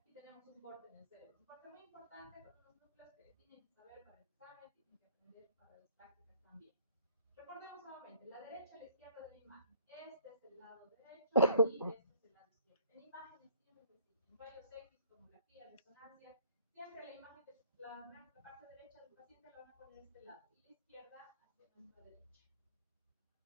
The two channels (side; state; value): both; inverted; correlation -0.60